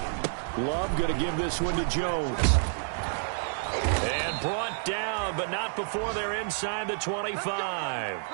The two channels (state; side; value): silent; left; digital silence